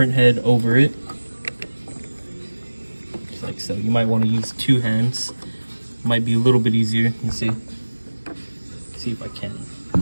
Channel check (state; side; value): inverted; both; correlation -1.00